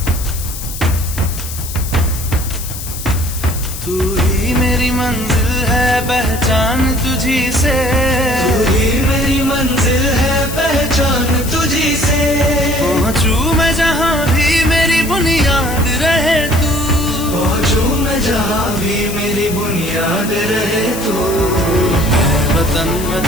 तू ही मेरी मंजिल है पहचान तुझी से, तू ही मेरी मंजिल है पहचान तुझी से। पहुँचूं मैं जहाँ भी मेरी बुनियाद रहे तू, पहुँचूं मैं जहाँ भी मेरी बुनियाद रहे तू। है वतन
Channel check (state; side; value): noise; left; hiss, 10 dB below the sound